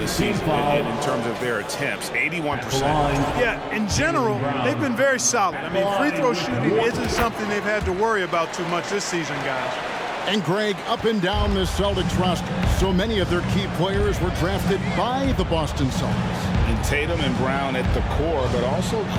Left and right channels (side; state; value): both; identical; correlation 1.00